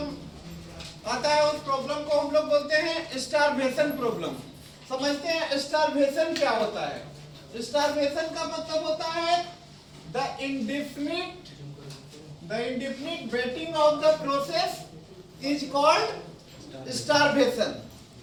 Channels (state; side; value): identical; both; correlation 1.00